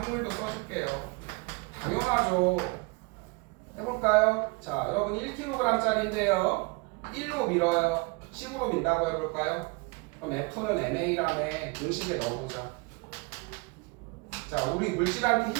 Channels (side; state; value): left; quieter; 27.9 dB